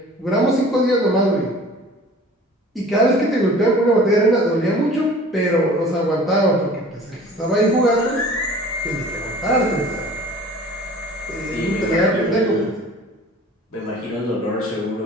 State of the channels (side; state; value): both; normal; correlation 0.46